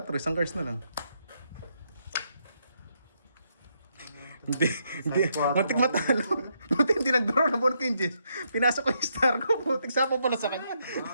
isang cards na lang. Hindi. Muntik matalo. Muntik hindi nag-draw na bonk yung Jess. Pinasok ko yung star ko. Muntik sapo pala sa kanya.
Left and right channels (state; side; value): inverted; both; correlation -0.77